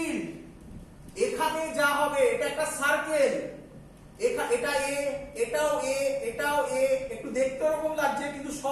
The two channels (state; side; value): identical; both; correlation 1.00